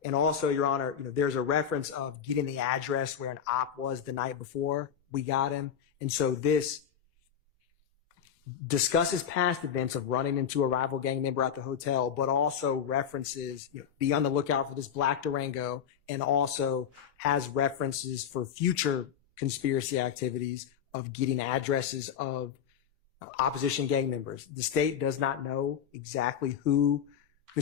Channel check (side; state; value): right; quieter; 8.4 dB